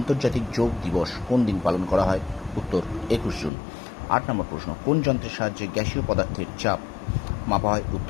যোগ দিবস কোন দিন পালন করা হয়? উত্তর 21 জুন। 8 নম্বর প্রশ্ন, কোন যন্ত্রের সাহায্যে গ্যাসীয় পদার্থের চাপ মাপা হয়?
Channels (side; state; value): right; drops out; at 3.5 s